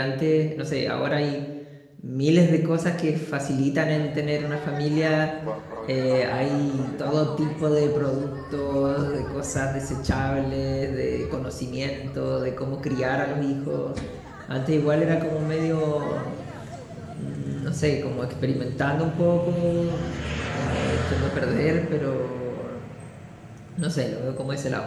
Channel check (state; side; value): identical; both; correlation 1.00